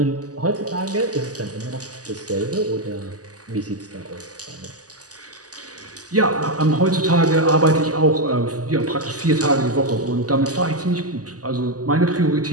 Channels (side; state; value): left; late; 0.67 ms